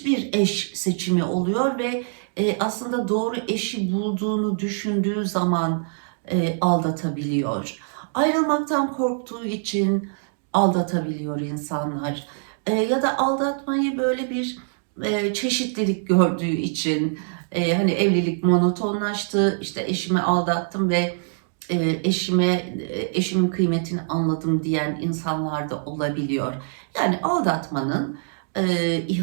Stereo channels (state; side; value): silent; left; digital silence